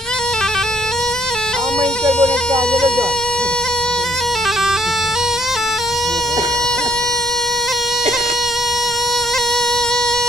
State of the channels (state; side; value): normal; both; correlation 0.67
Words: Main ke boneka aja lah John.